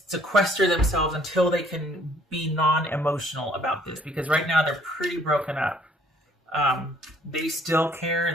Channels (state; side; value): normal; both; correlation 0.61